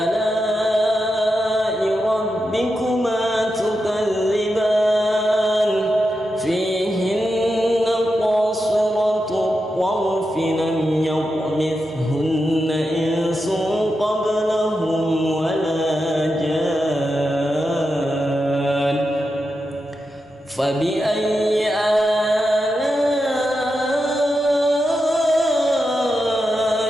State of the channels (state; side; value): normal; both; correlation 0.88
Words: ربكما تكذبان فيهن قاصرات الطرف لم يطمثهن إنس قبلهم ولا جان فبأي آلاء